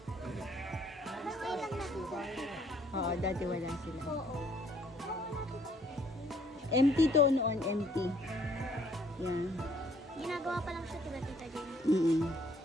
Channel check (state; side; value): normal; both; correlation 0.62